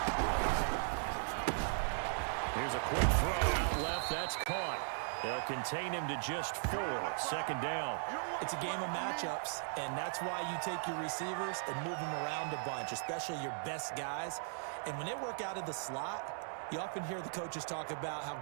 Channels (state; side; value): silent; left; digital silence